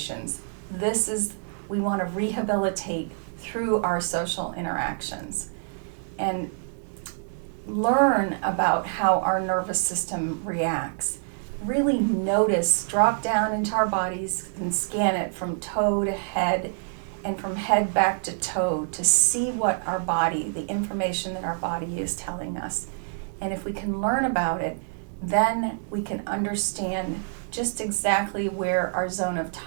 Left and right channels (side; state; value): left; silent; digital silence